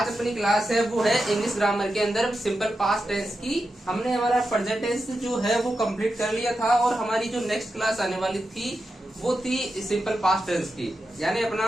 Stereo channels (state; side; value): normal; both; correlation 0.89